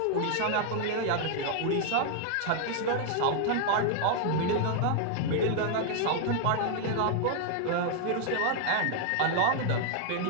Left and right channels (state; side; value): different; both; correlation 0.00